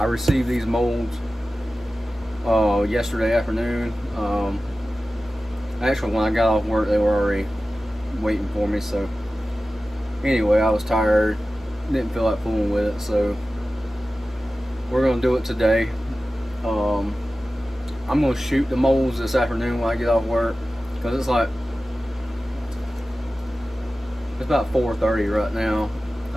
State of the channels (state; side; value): normal; both; correlation 0.95